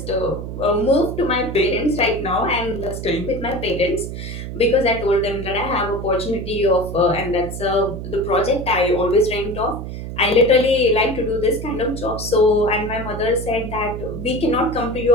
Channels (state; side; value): noise; right; hum, 8 dB below the sound